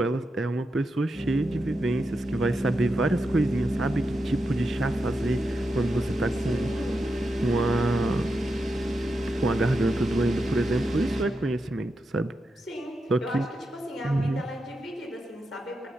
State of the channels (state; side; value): normal; both; correlation 0.87